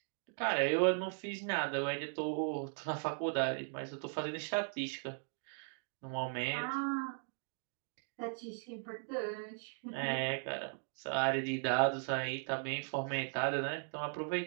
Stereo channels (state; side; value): silent; left; 52 dB below the other